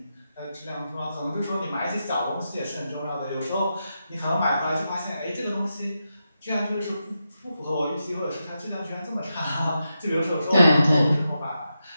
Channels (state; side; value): inverted; both; correlation -0.87